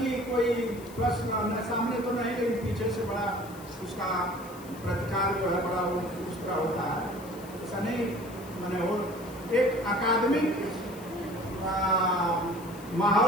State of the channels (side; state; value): left; noise; hiss, 20 dB below the sound